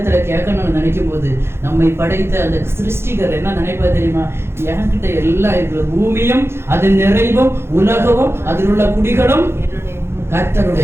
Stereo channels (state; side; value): late; left; 0.12 ms